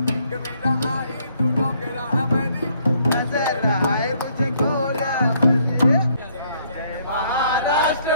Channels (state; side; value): inverted; both; correlation -0.67